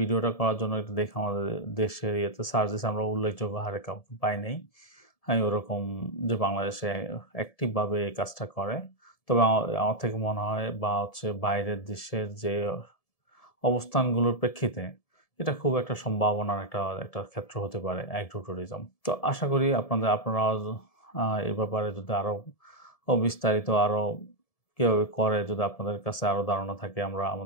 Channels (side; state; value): right; late; 1.7 ms